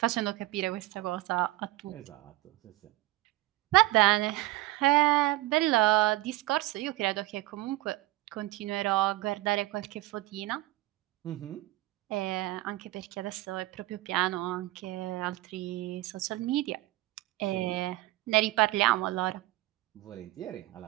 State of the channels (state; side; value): quieter; left; 17.5 dB